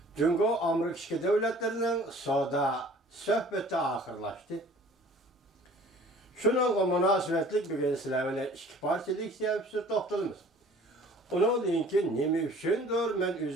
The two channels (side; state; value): both; normal; correlation 0.50